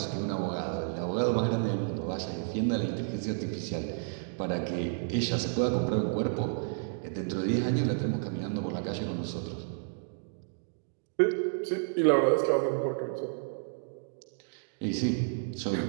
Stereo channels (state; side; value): silent; left; digital silence